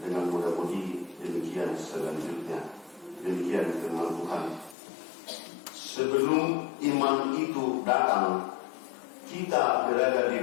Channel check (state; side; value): drops out; right; at 4.8 s